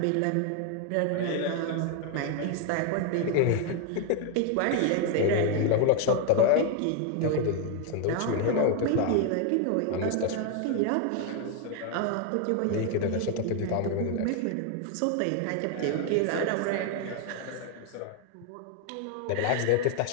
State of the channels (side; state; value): both; different; correlation 0.00